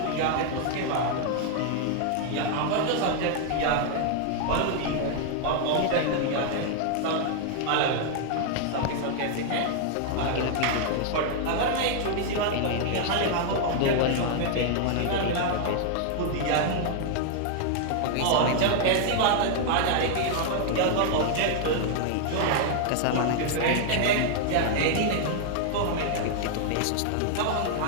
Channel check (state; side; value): different; both; correlation 0.00